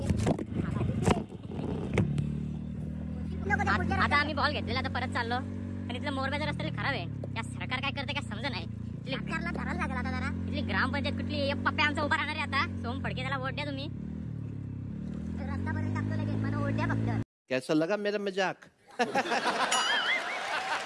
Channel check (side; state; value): both; identical; correlation 1.00